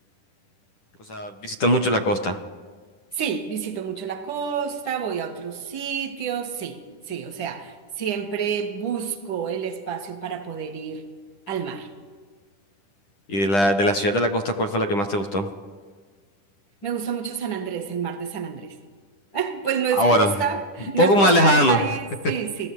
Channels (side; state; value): right; late; 10 ms